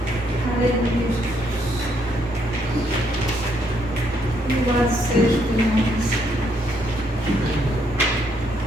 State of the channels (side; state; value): both; normal; correlation 0.72